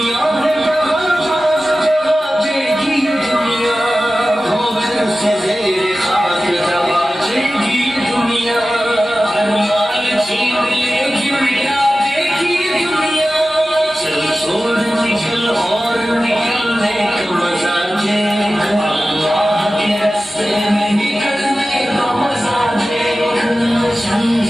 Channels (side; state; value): both; normal; correlation 0.95